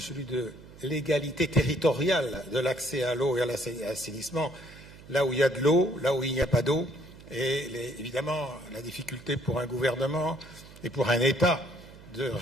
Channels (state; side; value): noise; right; hum, 19 dB below the sound